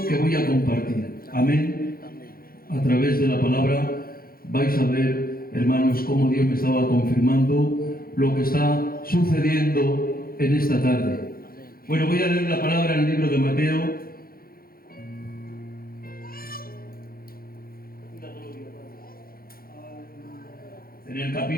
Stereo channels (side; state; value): right; late; 0.43 ms